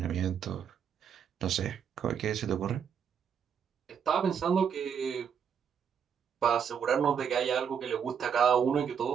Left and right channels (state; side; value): quieter; left; 7.5 dB